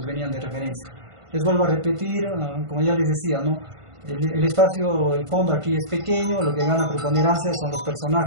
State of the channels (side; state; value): left; late; 1.5 ms